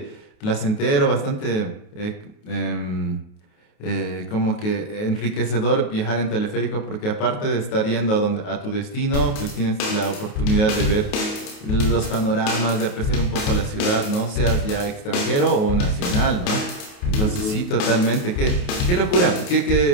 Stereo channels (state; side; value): late; right; 28 ms